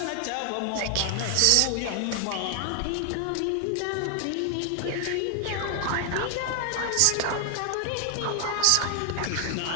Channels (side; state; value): both; different; correlation 0.00